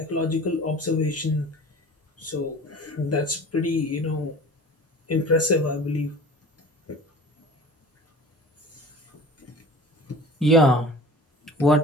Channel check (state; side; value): normal; both; correlation 0.41